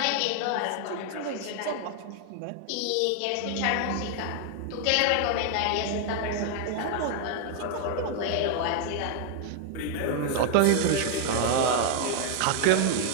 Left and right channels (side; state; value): both; different; correlation 0.00